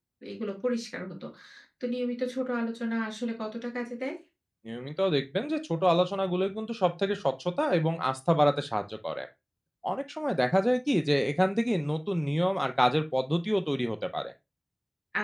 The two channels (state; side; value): identical; both; correlation 1.00